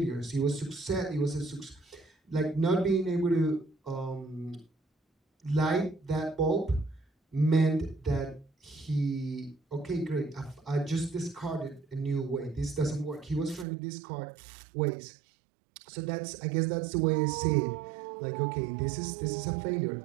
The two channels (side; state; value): left; drops out; at 13.7 s